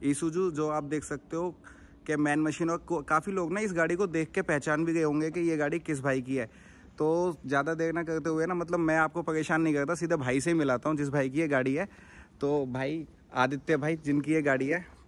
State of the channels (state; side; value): identical; both; correlation 1.00